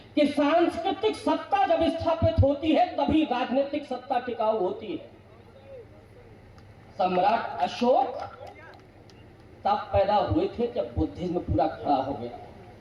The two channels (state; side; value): identical; both; correlation 1.00